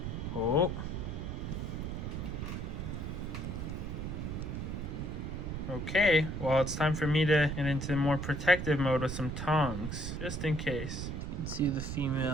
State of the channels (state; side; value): noise; right; rumble, 4 dB below the sound